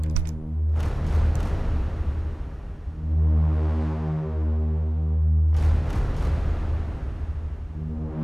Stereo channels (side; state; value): both; normal; correlation 0.98